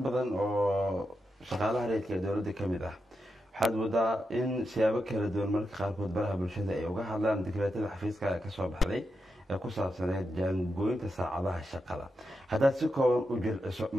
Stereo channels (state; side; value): normal; both; correlation 0.87